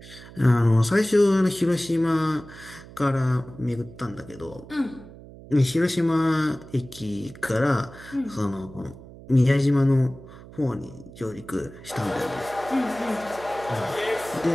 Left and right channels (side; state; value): right; noise; hum, 18 dB below the sound